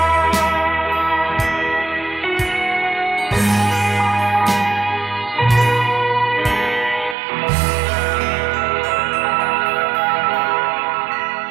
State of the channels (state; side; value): drops out; left; at 7.2 s